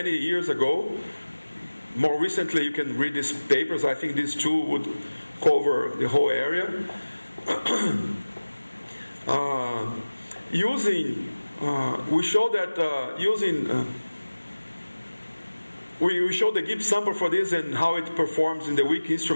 years ago. More recently, you can read these papers. I think these 2 would cover the whole area. We show that we showed the Gibbs sample for this and how it performs in the weak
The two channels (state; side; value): inverted; both; correlation -1.00